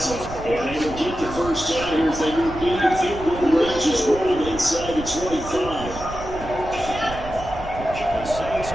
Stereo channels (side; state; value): right; noise; rumble, 12 dB below the sound